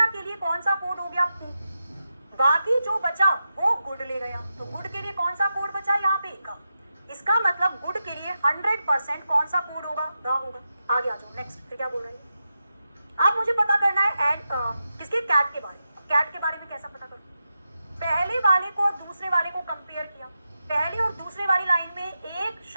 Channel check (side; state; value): both; inverted; correlation -0.88